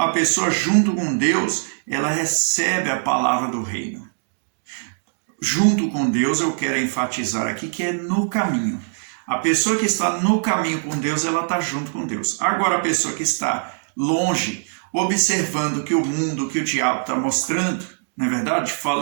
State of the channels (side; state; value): left; silent; digital silence